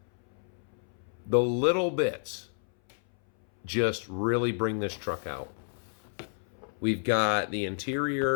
The little bits just really bring this truck out. We've got the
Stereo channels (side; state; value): right; silent; 58 dB below the other